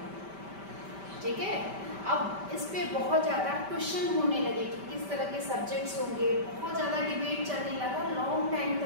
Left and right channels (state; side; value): late; left; 5.1 ms